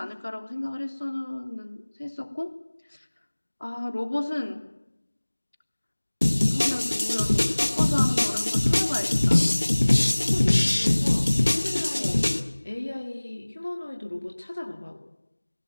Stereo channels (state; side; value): inverted; both; correlation -1.00